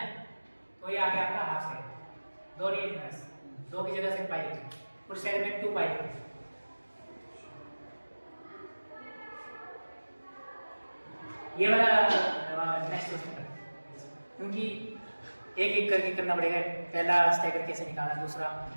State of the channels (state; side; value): inverted; both; correlation -1.00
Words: है, तो ये आ गया आपका हाफ साइड। 2 नहीं लिखना है, 2 की जगह से पाई लिखना, पूरे साइड में 2 पाई लिखना। ये वाला नेक्स्ट क्वेश्चन, क्योंकि एक एक करके करना पड़ेगा। पहला स्टैगर कैसे निकालना, दूसरा